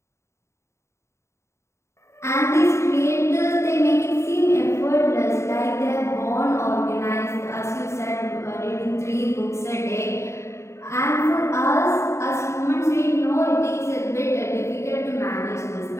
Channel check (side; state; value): right; late; 0.14 ms